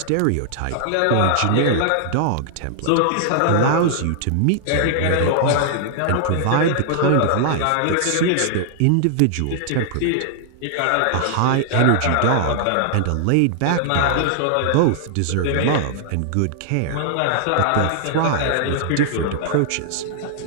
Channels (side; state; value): both; different; correlation -0.01